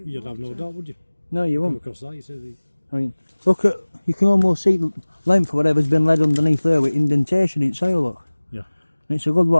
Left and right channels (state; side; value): inverted; both; correlation -1.00